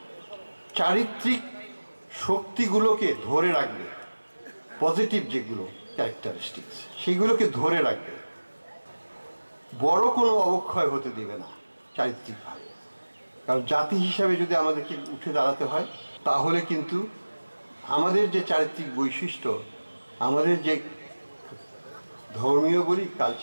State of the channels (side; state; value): both; inverted; correlation -1.00